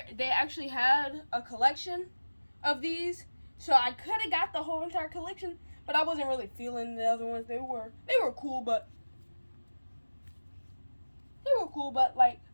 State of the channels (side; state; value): both; inverted; correlation -1.00